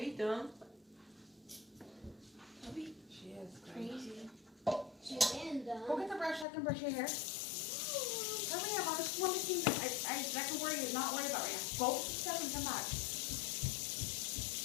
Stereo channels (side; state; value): right; drops out; at 6.5 s